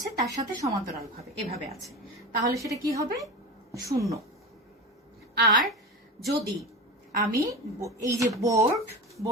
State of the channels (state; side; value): normal; both; correlation 0.26